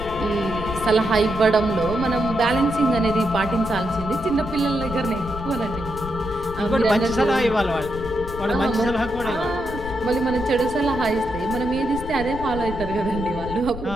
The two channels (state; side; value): noise; left; rumble, 10 dB below the sound